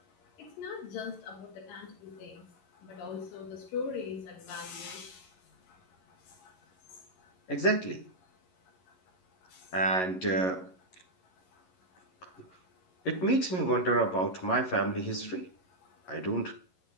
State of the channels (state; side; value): late; right; 11 ms